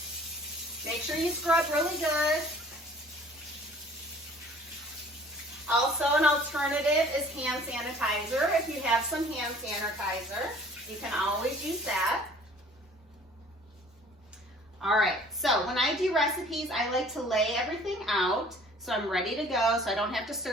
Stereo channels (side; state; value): both; normal; correlation 0.52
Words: Make sure you scrub really good. Also, an alternative is hand sanitizer. If you have some hand sanitizer, you can always use that. All right, so when I do recipes, I like to lay everything out so I'm ready to go, so I don't have to